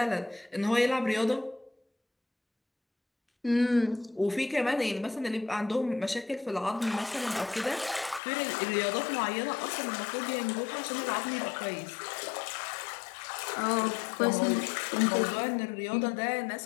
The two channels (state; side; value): drops out; right; at 8.2 s